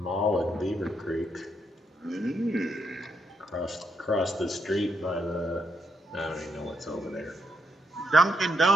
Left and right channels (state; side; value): normal; both; correlation 0.77